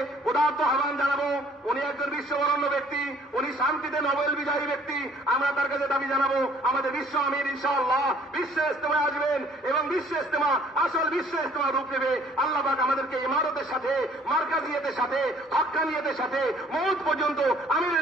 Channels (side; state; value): both; normal; correlation 0.58